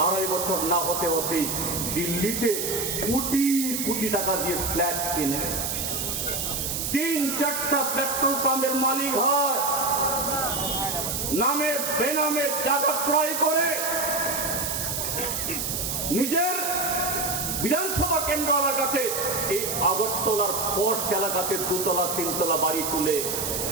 2.5 বছর না হতে হতেই দিল্লিতে কোটি কোটি টাকা দিয়ে ফ্ল্যাট কিনে 3-4টা পেট্রোল পাম্পের মালিক হয়, নামে বেনামে জায়গা ক্রয় করে নিজের বিধানসভা কেন্দ্র এলাকাতে এই আগরতলার পশ এলাকাতে 2তলা 3তলা বাড়ি তুলে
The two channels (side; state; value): right; noise; hiss, 2 dB below the sound